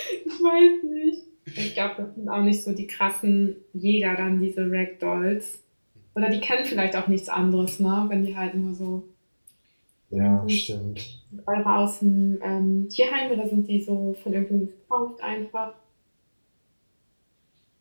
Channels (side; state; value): both; inverted; correlation -1.00